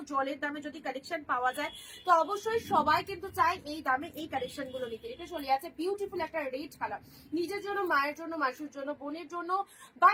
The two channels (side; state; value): both; identical; correlation 1.00